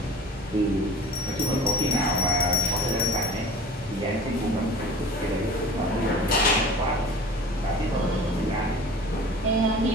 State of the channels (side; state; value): both; normal; correlation 0.40